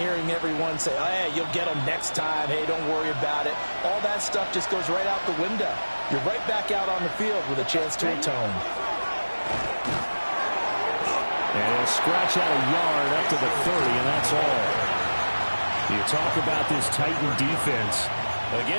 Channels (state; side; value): inverted; both; correlation -1.00